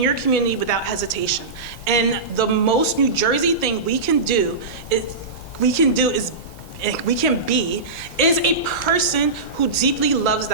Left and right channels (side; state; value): left; quieter; 3.8 dB